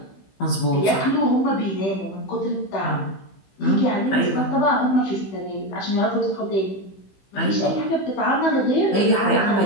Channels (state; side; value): late; right; 15 ms